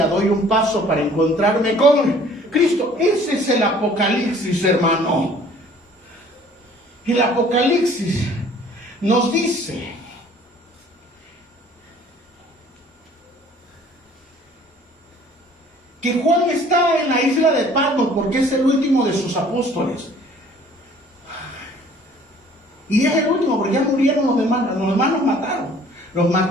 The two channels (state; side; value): normal; both; correlation 0.54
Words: doy un paso para encontrarme con Cristo. Ese es el Apocalipsis, hermano. El Apocalipsis nos dice que Juan está en la isla de Patmos porque es el último de sus apóstoles. Y es el último porque ya murieron los demás. Los demás los mataron, los